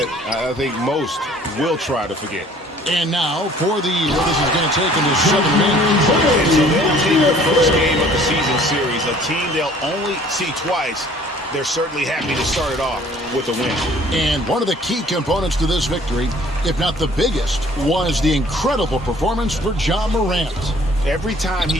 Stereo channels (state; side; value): normal; both; correlation 0.54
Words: I think most will try to forget. And now for the, well, this is going to take into 7 minutes. And so they'll take the first game of the season series, a team they'll only see twice. They're certainly happy to start it off with a win. And one of the key components to this victory, if not the biggest, was the incredible performance for Ja Morant. Every time